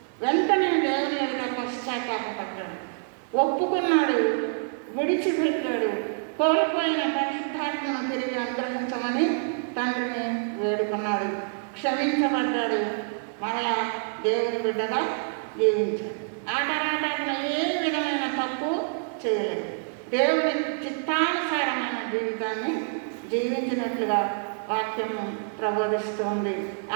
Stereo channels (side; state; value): left; silent; digital silence